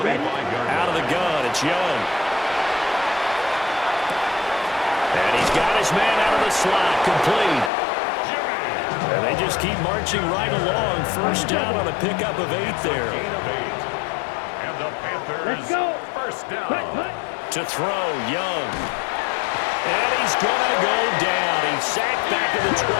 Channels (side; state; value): right; drops out; at 7.7 s